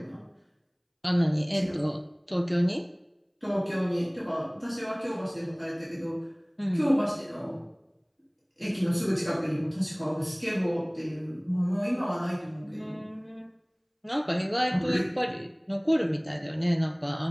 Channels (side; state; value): both; identical; correlation 1.00